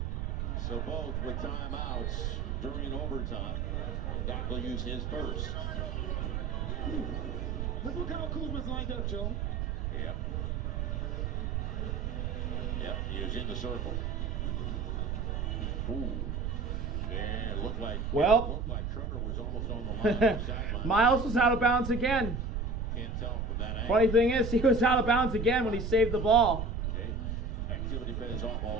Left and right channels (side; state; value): right; noise; rumble, 2 dB below the sound